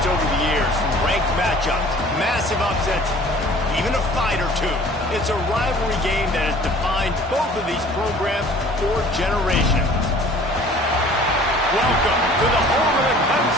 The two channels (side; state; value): both; normal; correlation 0.49